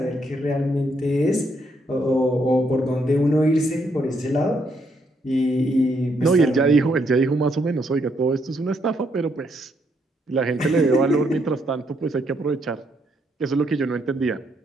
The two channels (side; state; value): both; normal; correlation 0.74